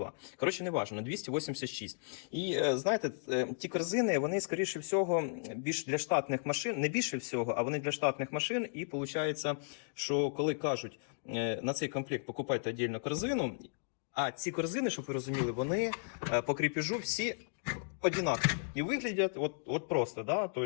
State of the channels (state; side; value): silent; right; digital silence